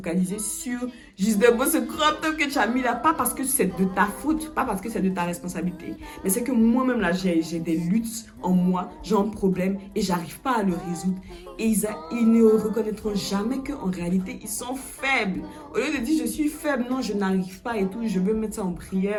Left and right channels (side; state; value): both; identical; correlation 1.00